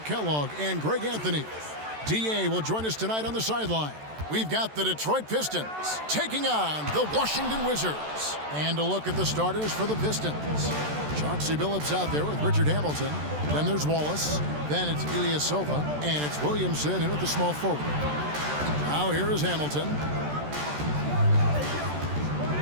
Kellogg and Greg Anthony. DA will join us tonight on the sideline. We've got the Detroit Pistons taking on the Washington Wizards. And a look at the starters for the Pistons. Chauncey Billups out there with Richard Hamilton. Then there's Wallace. Then it's Ilyasova. And it's Williamson in at the small forward. Now here is Hamilton.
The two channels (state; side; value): late; left; 14 ms